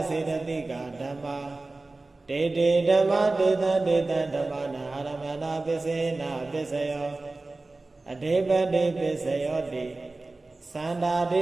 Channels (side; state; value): left; quieter; 3.2 dB